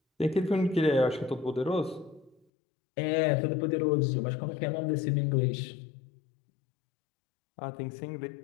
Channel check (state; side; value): drops out; right; at 2.5 s